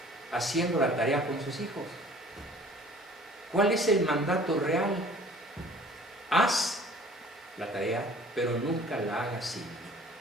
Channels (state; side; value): normal; both; correlation 0.50